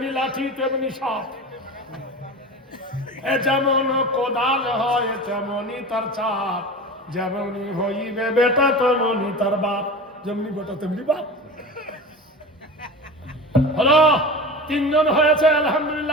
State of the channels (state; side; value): normal; both; correlation 0.31